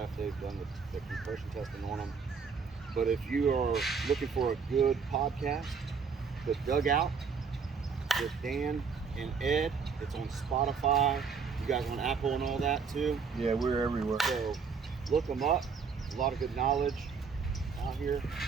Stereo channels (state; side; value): quieter; left; 5.6 dB